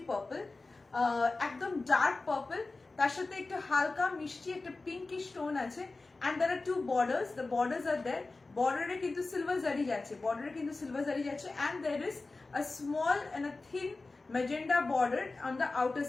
purple. একদম dark purple. তার সাথে একটু হালকা মিষ্টি একটা pinkish tone আছে. And there are two borders. The borders are there. Border এ কিন্তু silver zari যাচ্ছে. Border এ কিন্তু silver zari যাচ্ছে. And there is a small and a thin magenta border on the outer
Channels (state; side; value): quieter; right; 3.5 dB